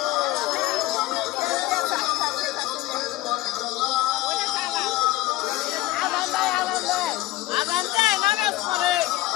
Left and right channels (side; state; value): right; quieter; 17.2 dB